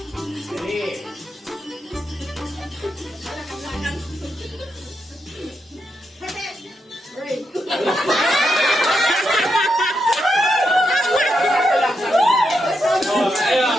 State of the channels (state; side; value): normal; both; correlation 0.84